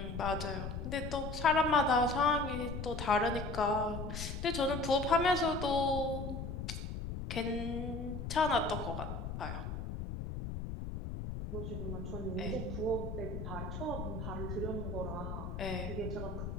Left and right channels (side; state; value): left; noise; rumble, 5 dB below the sound